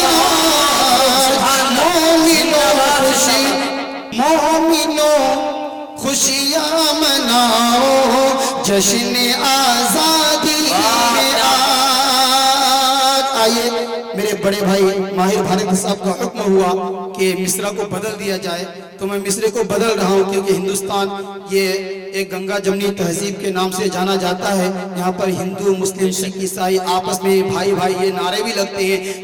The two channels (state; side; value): identical; both; correlation 1.00